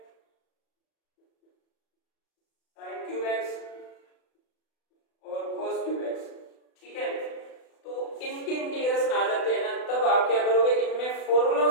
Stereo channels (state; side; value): late; right; 36 ms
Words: sin cube x और cos क्यूब x, ठीक है। तो इनके इंटीग्रेशन आ जाते हैं ना, तब आप क्या करोगे, इनमें फॉर्मूलों